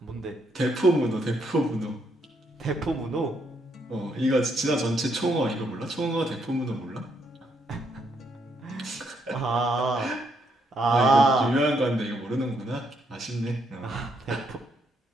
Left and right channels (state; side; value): normal; both; correlation 0.75